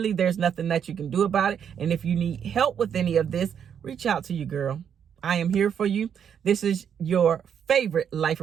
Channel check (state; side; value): quieter; left; 8.1 dB